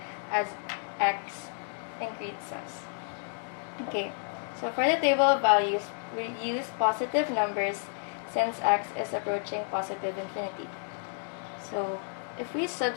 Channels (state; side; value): silent; right; 57 dB below the other